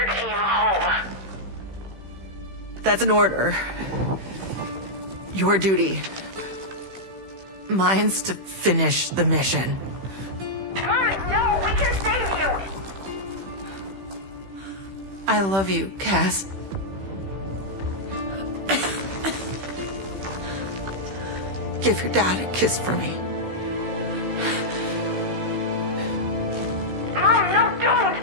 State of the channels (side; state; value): left; late; 16 ms